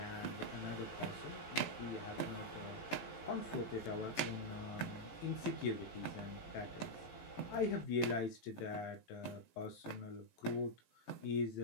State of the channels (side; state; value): right; late; 17 ms